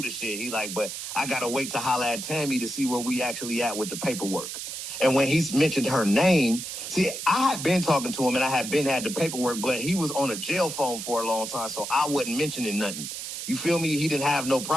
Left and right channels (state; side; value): noise; right; hiss, 7 dB below the sound